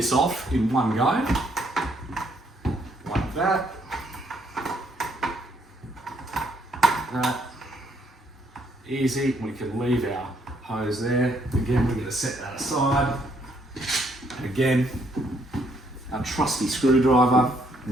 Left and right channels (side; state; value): both; normal; correlation 0.70